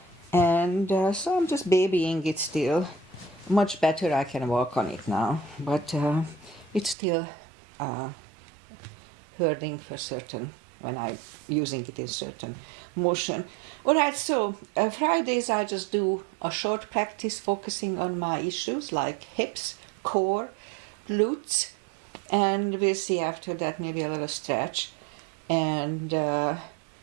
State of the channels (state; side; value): drops out; left; at 7.0 s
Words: and so I'm just babying it still. Much better, I can walk on it now, but it's still hurting for certain when I'm using it in certain motion. Alright, so Fridays I just do a short practice focusing on my issues like hips, core, glutes, and we'll see after that maybe a little stretch. And